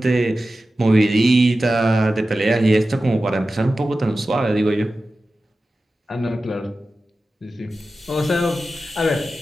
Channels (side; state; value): both; normal; correlation 0.94